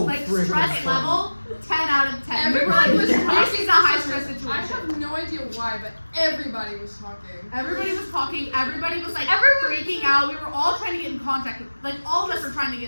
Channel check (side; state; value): both; inverted; correlation -1.00